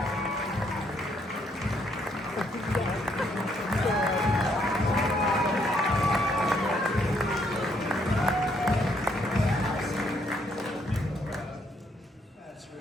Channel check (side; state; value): both; normal; correlation 0.71